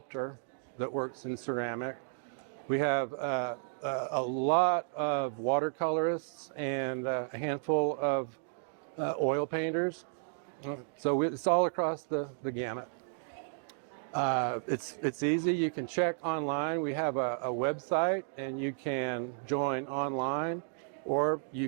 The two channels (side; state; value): left; silent; digital silence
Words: that works in ceramic. We have a lot of watercolorists and a handful of oil painters. So it's all across the gamut. It's easy. You can check online. We have a website, and you can join online, or